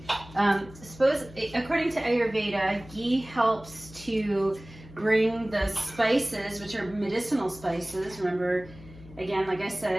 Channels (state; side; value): noise; left; hum, 19 dB below the sound